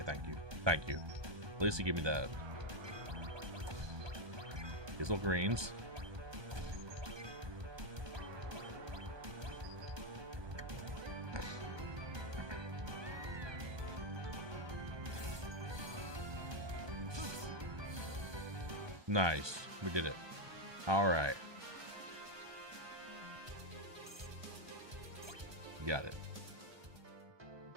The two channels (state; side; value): late; left; 1.2 ms